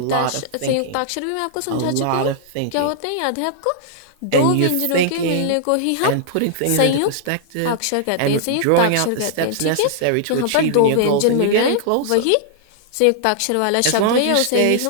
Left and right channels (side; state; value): both; different; correlation -0.01